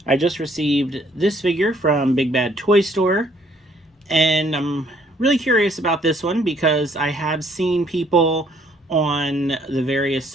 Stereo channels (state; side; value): normal; both; correlation 0.64